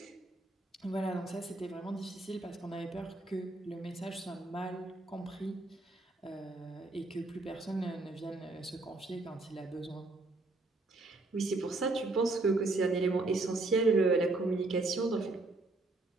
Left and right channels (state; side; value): quieter; left; 3.1 dB